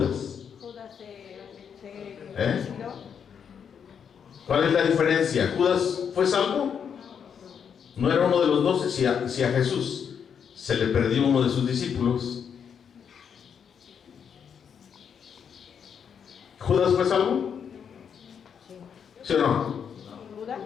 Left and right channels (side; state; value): right; quieter; 7.4 dB